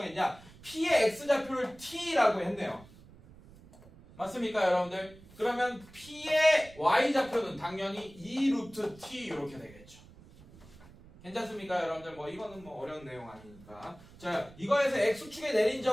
p의 x좌표를 t라고 했네요. 맞습니까 여러분들? 그러면 p의 y좌표는 당연히 2 루트 t 이렇게 되겠죠. 괜찮습니까 여러분들? 뭐 이거는 뭐 어려운 내용 아니니까. 자 이거에서 x축에 내린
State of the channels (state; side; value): noise; right; rumble, 22 dB below the sound